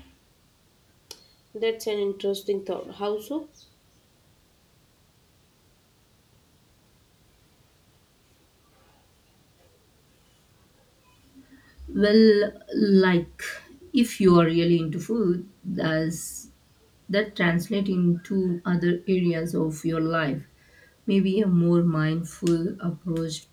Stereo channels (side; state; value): both; identical; correlation 1.00